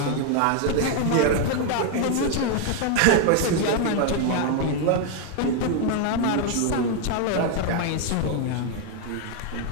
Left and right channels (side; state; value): both; different; correlation 0.00